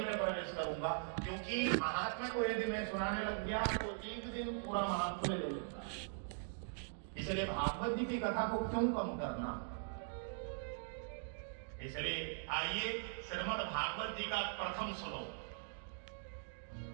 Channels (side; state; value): left; silent; digital silence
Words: प्रवेश करूंगा, क्योंकि महात्म्य को यदि मैं सुनाने लग गया तो एक दिन पूरा महात्म्य ले लूंगा। इसलिए भागवत जी की कथा को क्यों कम करना। इसलिए आइए श्रीमद् भागवत जी का प्रथम श्लोक।